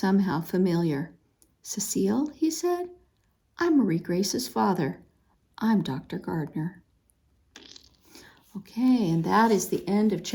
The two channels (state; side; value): identical; both; correlation 1.00